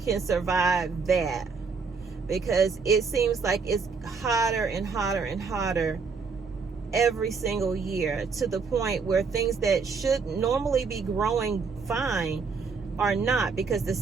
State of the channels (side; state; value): left; quieter; 5.0 dB